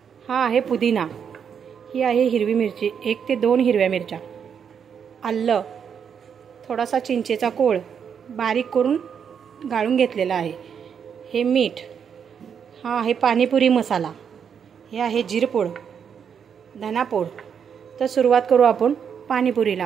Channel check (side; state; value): left; quieter; 7.4 dB